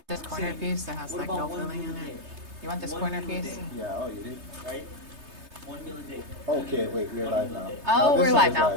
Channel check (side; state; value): left; late; 3.3 ms